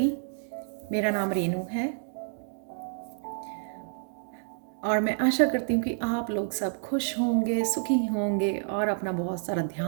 मेरा नाम रेनू है और मैं आशा करती हूँ कि आप लोग सब खुश होंगे, सुखी होंगे और अपना बहुत सारा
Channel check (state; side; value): silent; left; digital silence